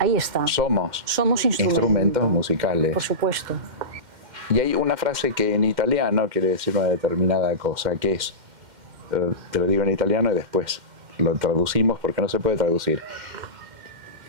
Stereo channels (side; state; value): left; late; 2.1 ms